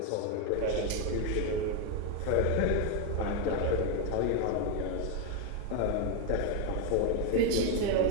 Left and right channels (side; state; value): both; different; correlation 0.01